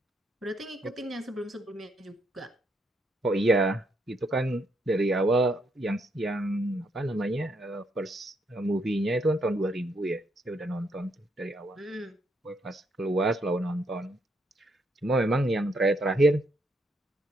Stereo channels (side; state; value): both; normal; correlation 0.75